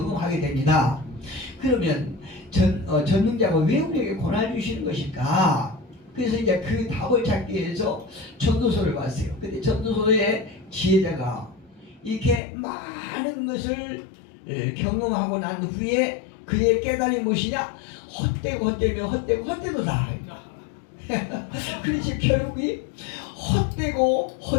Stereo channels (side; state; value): right; drops out; at 12.4 s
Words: 됩니다. 그러면 전능자가 왜 우리에게 고난을 주시는 것일까? 그래서 이제 그 답을 찾기 위해서 전도서를 봤어요. 근데 전도서의 지혜자가 이렇게 많은 것을 경험하고 난 후에 그의 깨달음이 무엇이냐? 헛되도다. 그렇지 결국이 헛되다.